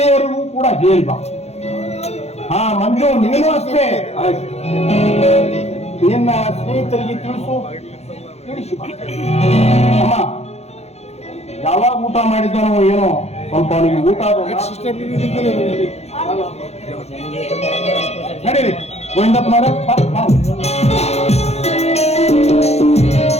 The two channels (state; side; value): late; right; 0.31 ms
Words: ಕೂಡ ಹೇಳ್ಬಾ. ಹಾ ಮಂಜು, ನೀನು ಅಷ್ಟೇ ನಿನ್ನ ಸ್ನೇಹಿತರಿಗೆ ತಿಳಿಸು. ಅಮ್ಮ ಯಾವಾಗ ಊಟ ಮಾಡಿದ್ದಾನೋ ಏನೋ ಸ್ವಲ್ಪ ಅವನಿಗೆ ಊಟ ನಡೀರಿ ಗೋವಿಂದಪ್ಪನವರ.